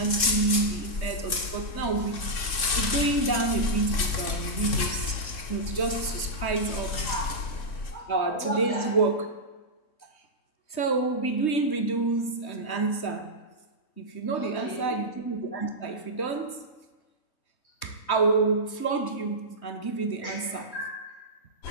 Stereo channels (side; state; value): right; late; 3.7 ms